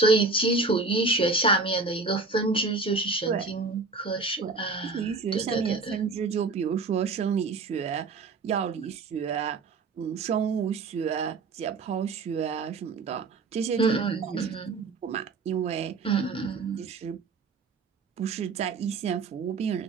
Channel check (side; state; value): left; quieter; 4.0 dB